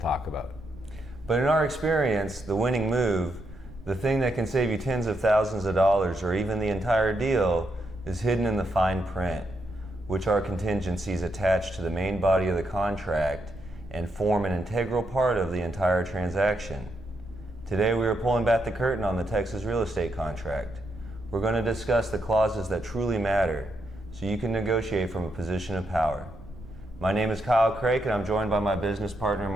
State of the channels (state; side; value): noise; right; rumble, 19 dB below the sound